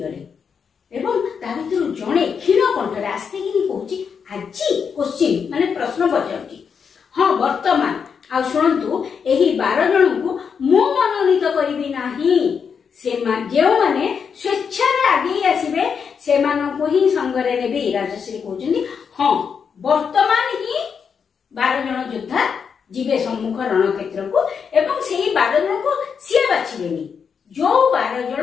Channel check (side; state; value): right; quieter; 6.5 dB